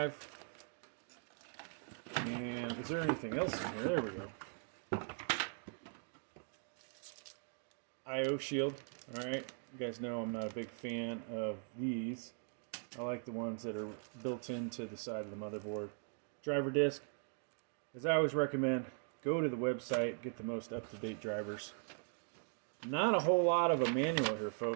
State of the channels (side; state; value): left; silent; 51 dB below the other